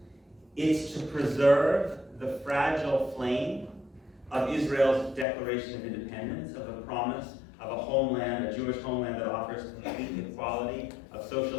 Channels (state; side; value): drops out; right; at 5.2 s